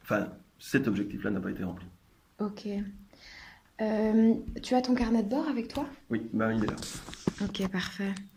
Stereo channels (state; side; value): identical; both; correlation 1.00